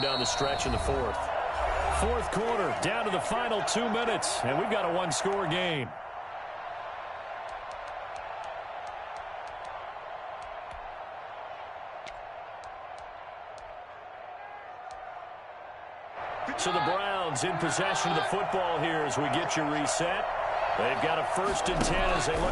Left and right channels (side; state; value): both; identical; correlation 1.00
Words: down the stretch in the fourth. Fourth quarter, down to the final 2 minutes, and we've got a one-score game. So the Browns in possession of the football here as we get you reset. They've got a 1st and 10 as they